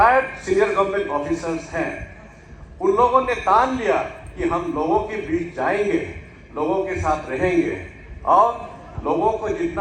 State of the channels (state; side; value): identical; both; correlation 1.00